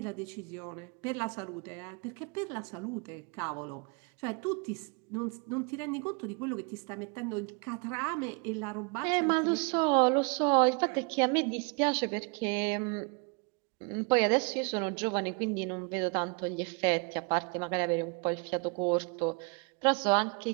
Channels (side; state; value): left; quieter; 33.7 dB